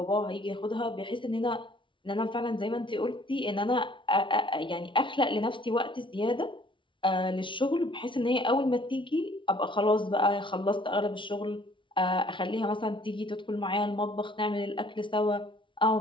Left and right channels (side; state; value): right; late; 0.24 ms